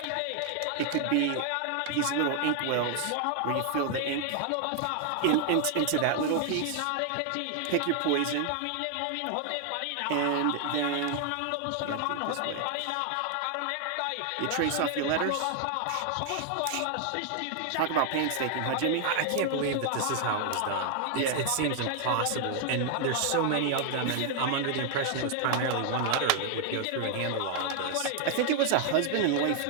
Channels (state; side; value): different; both; correlation 0.00